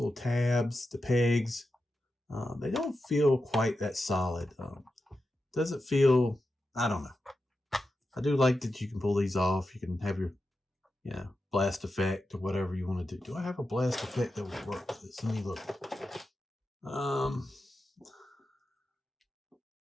tabs, the pegs. They don't feel quite that solid. Doesn't feel, I don't know. I do like that you can pull these off. You can have your, blast effect or whatever you want to do. Do I have a blast effect that would work with this? Let me look.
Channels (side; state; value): both; normal; correlation 0.90